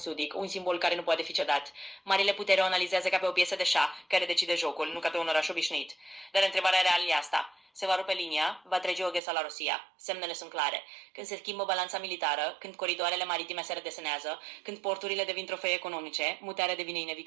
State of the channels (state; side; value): drops out; left; at 9.2 s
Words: un simbol care nu poate fi cedat. Marile putere o analizează ca pe o piesă de șah care decide jocul, nu ca pe un oraș obișnuit. Dar întrebarea reală e asta. Se va rupe linia, va trece Odessa la Rusia. Semnele sunt clare. Când se schimbă balanța militară, când coridoarele maritime se redesenează, când porturile devin trofee economice, mutarea devine